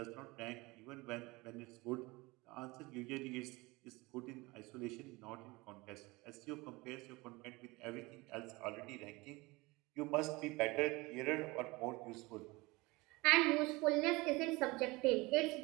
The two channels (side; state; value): left; quieter; 23.2 dB